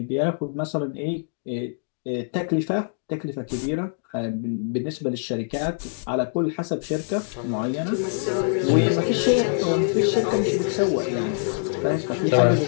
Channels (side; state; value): right; silent; digital silence